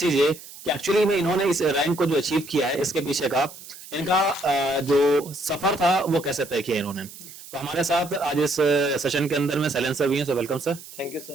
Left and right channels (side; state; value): right; noise; hiss, 16 dB below the sound